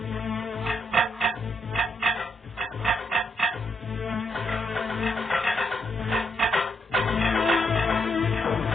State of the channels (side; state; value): both; normal; correlation 0.78